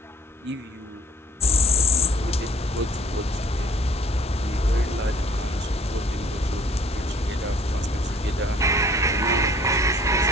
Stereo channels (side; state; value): both; normal; correlation 0.52